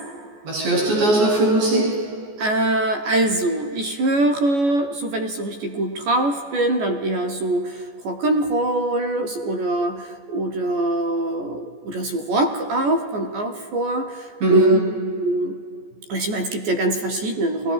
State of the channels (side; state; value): left; late; 14 ms